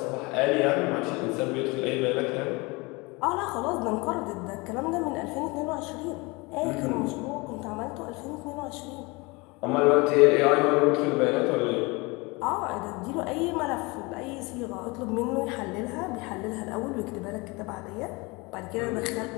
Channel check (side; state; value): right; quieter; 25.8 dB